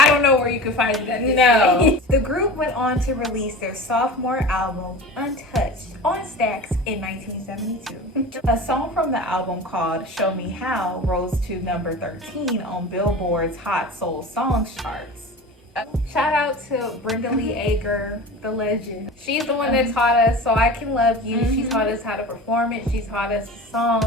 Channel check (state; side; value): normal; both; correlation 0.34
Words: don't know where you can find it at this No. The group went on to release their sophomore album, Untouched, on Stax in 1972. A song from the album called Show Me How rose to number 13 on Billboard's Hot Soul Songs charts. Shout out to Brenda Lee Ager, the legend. She's the one that taught us So I Can Love You. She taught us how to perform it. She taught us the